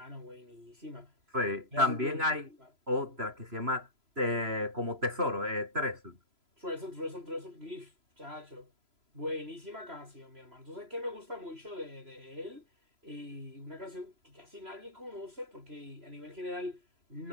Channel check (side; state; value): left; late; 3.0 ms